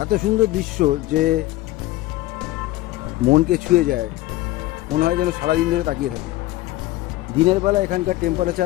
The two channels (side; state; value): right; quieter; 17.2 dB